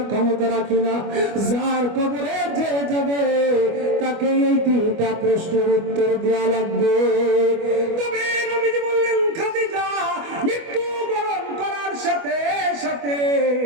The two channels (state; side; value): late; left; 25 ms